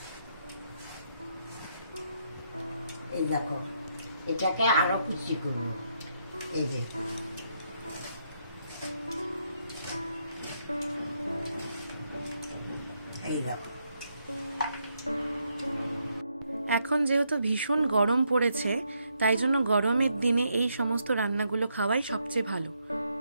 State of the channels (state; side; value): inverted; both; correlation -0.77